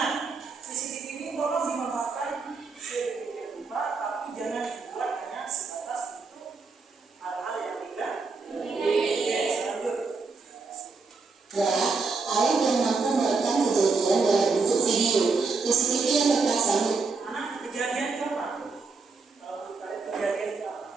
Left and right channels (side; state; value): left; quieter; 4.4 dB